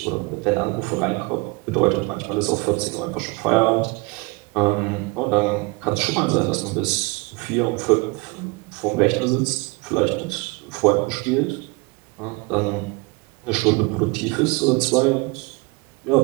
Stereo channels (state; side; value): quieter; left; 26.5 dB